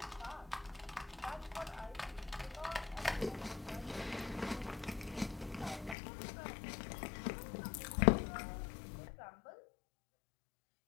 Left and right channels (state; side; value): drops out; right; at 6.0 s